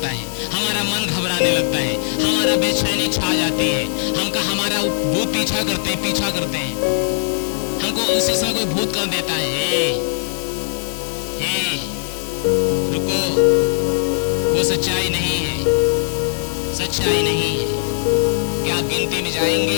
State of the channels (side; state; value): right; silent; digital silence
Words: है, हमारा मन घबराने लगता है, हमारा बेचैनी छा जाती है, हमारा भूत पीछा करते हैं, हमको उसी समय कोई भूत कर देता है, हे रुको, वो सच्चाई नहीं है, सच्चाई नहीं है। क्या आप गिनती में